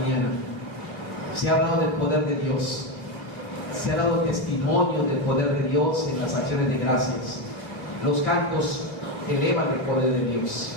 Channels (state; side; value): late; right; 2.6 ms